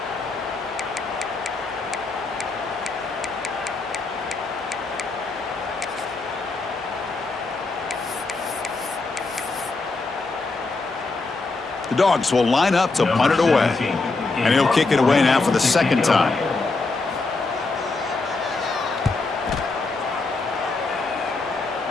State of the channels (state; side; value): quieter; right; 3.6 dB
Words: The Dogs will line up to punt it away. And he'll kick it away now for the second time.